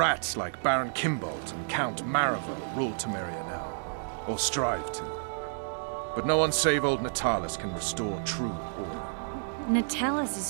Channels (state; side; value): silent; left; digital silence